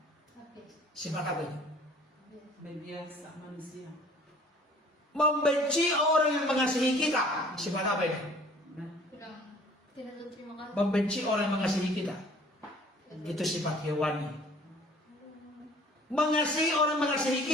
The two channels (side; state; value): both; normal; correlation 0.52